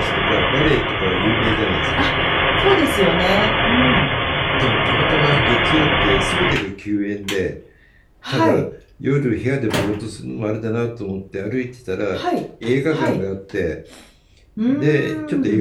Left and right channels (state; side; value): identical; both; correlation 1.00